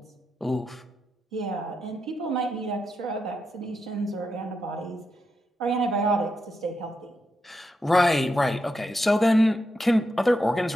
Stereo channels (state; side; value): normal; both; correlation 0.85